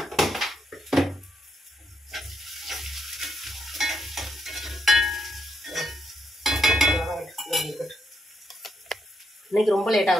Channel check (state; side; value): normal; both; correlation 0.78